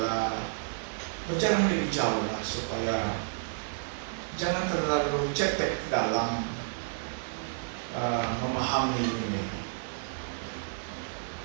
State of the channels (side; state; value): left; silent; digital silence